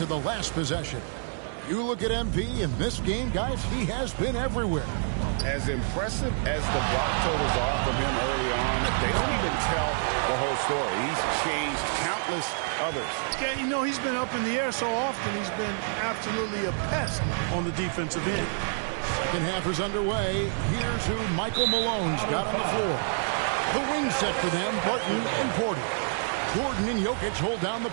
the last possession. You look at MP in this game, guys, he has been everywhere. As impressive as the block totals are from him early on, they don't even tell the whole story. He's changed countless others. Yeah, you know, he's been up in the air so often, he's been absolutely a pest on the defensive end. Second half is underway. Here's who Michael Malone's got on the floor. The wing set for them, Barton and Porter. Gordon and Jokic hold down the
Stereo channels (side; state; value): left; silent; digital silence